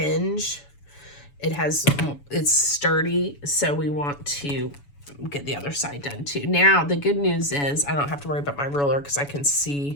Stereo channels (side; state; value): right; late; 7.0 ms